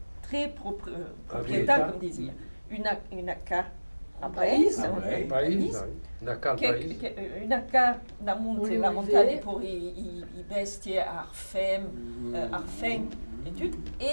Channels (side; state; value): both; inverted; correlation -1.00